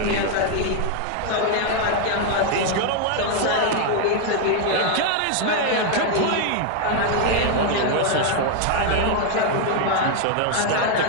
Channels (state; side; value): different; both; correlation 0.00